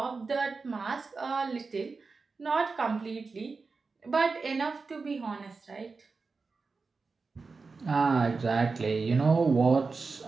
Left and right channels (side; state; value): left; quieter; 4.3 dB